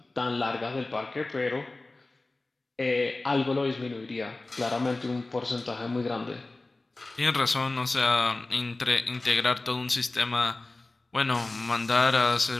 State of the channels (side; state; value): right; quieter; 3.1 dB